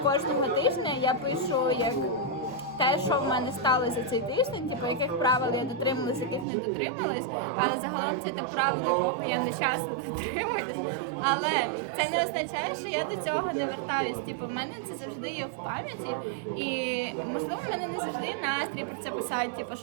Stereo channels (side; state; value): left; drops out; at 6.5 s